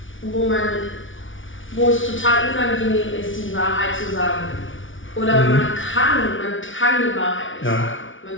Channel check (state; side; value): late; right; 0.57 ms